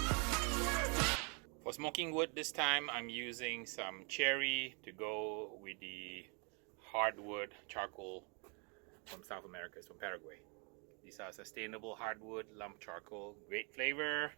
For smoking wood this time, I'm using some cherry to go with the hardwood charcoal from South America. It's from Paraguay. These are sustainable hardwood lump charcoal, great flavor,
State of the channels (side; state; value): left; quieter; 35.1 dB